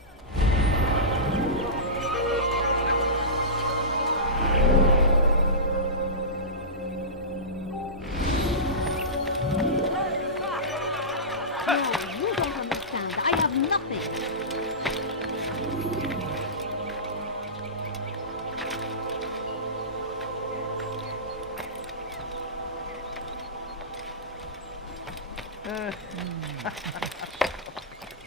You don't understand. I have nothing.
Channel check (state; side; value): normal; both; correlation -0.20